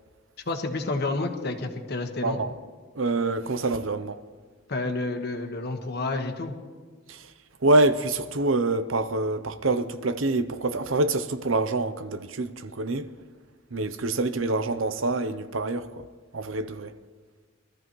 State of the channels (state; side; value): normal; both; correlation -0.15